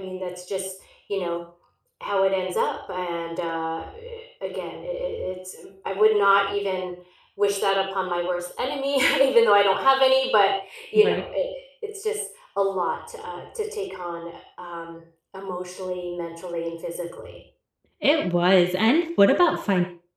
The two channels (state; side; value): identical; both; correlation 1.00